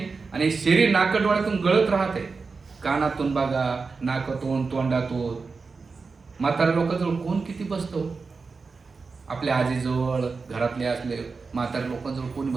आणि शरीर नाकडोळ्यातून गळत राहते. कानातून बघा, नाकातून, तोंडातून. म्हाताऱ्या लोकांजवळ कोण किती बसतो, आपल्या आजीजवळ, घरातले असले म्हाताऱ्या लोकांजवळ कोणी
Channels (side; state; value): left; quieter; 4.5 dB